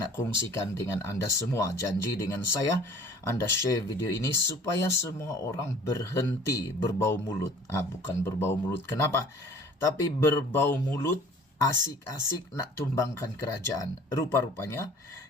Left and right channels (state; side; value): normal; both; correlation 0.49